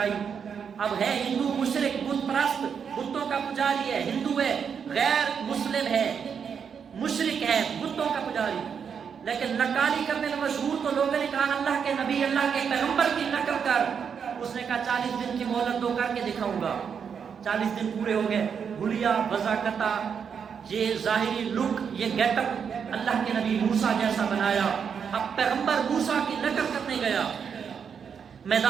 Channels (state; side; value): quieter; left; 6.9 dB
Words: اب ہے ہندو مشرک، بت پرست، بتوں کا پجاری ہے، ہندو ہے، غیر مسلم ہے، مشرک ہے، بتوں کا پجاری، لیکن نقالی کرنے میں مشہور، تو لوگوں نے کہا اللہ کے نبی، اللہ کے پیغمبر کی نقل کر۔ اس نے کہا 40 دن کی مہلت دو، کر کے دکھاؤں گا۔ 40 دن پورے ہو گئے، بھولیا، وضاقتہ، یہ ظاہری لک، یہ گیٹ اپ اللہ کے نبی موسیٰ جیسا بنایا۔ اب پیغمبر موسیٰ کی نقل کرنے گیا،